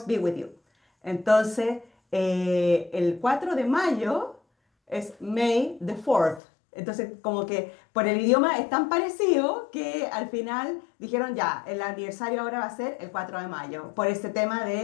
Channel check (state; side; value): drops out; right; at 6.4 s